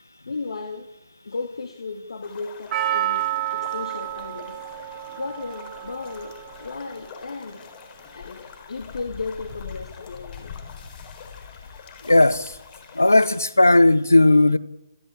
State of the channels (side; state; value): both; inverted; correlation -0.90